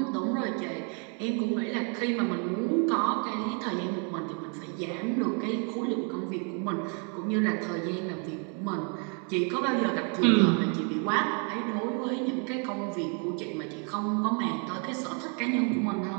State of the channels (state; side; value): quieter; left; 38.9 dB